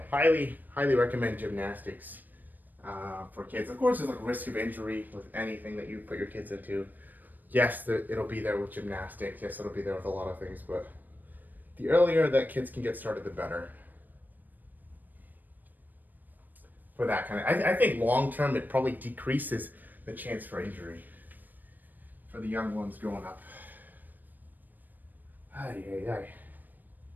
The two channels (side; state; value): left; late; 0.088 ms